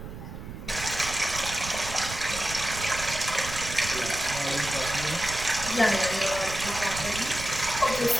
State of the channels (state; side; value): noise; right; rumble, 10 dB below the sound